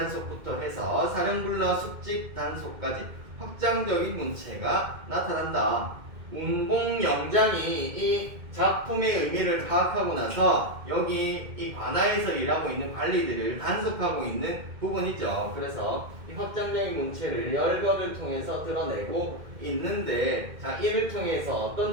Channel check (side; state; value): left; late; 2.1 ms